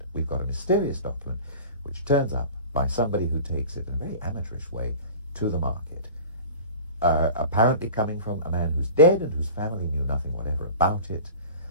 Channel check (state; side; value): inverted; both; correlation -0.39